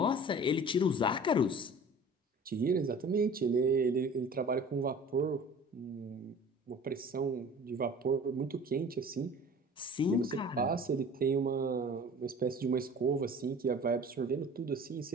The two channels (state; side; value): normal; both; correlation 0.44